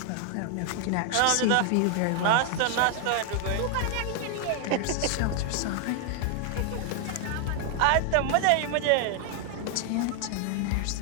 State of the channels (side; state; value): both; different; correlation 0.00